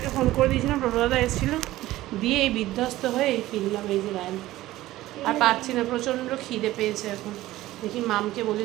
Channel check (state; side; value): quieter; left; 16.2 dB